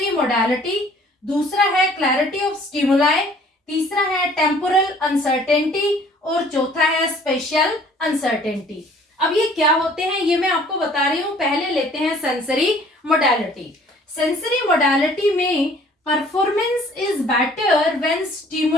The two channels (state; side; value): normal; both; correlation 0.55